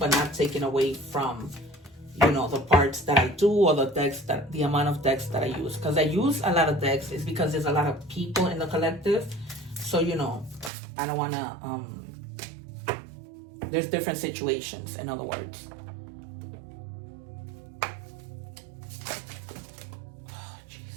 not taking away from, the parts that I do, or the amount of decks that I use. Because I use a lot of decks is because there's a lot of people in the collective. So, I don't want to, there's different situations, in other words. Oh,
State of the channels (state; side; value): drops out; left; at 10.7 s